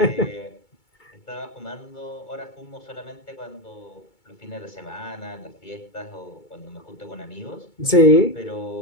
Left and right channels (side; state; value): right; late; 2.2 ms